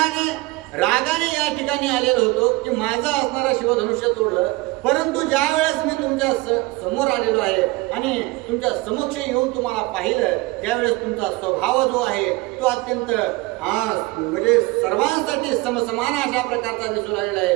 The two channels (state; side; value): quieter; left; 21.9 dB